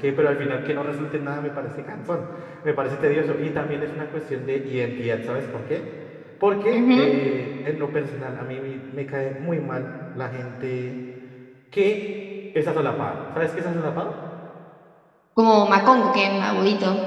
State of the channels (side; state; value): both; identical; correlation 1.00